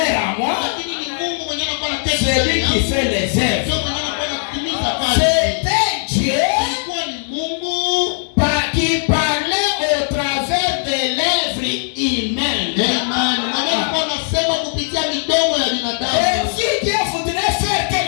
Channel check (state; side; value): silent; right; 67 dB below the other